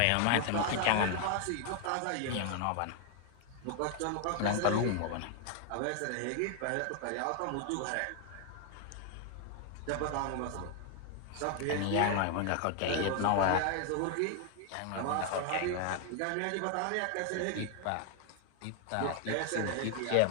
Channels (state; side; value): different; both; correlation 0.00